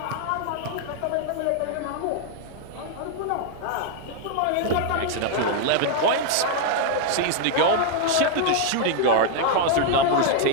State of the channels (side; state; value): both; different; correlation 0.00